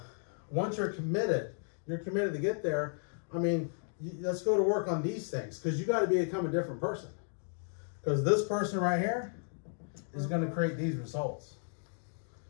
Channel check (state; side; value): silent; right; 55 dB below the other